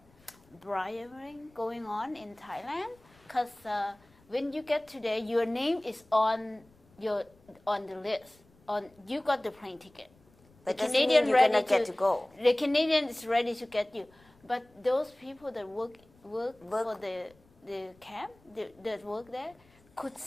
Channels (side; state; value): left; noise; rumble, 30 dB below the sound